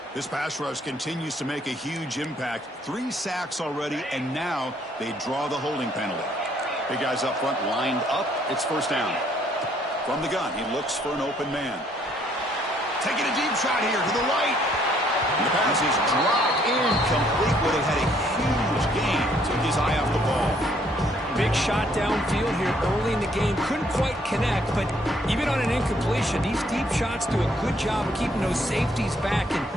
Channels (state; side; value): normal; both; correlation 0.66